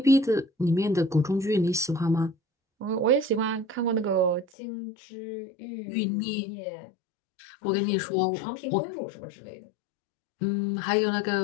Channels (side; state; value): right; drops out; at 4.5 s